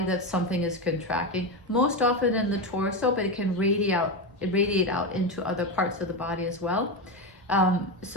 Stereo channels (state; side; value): normal; both; correlation 0.15